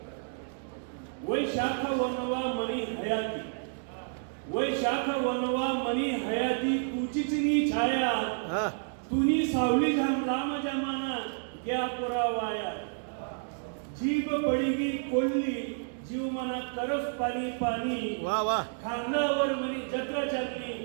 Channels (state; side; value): silent; left; digital silence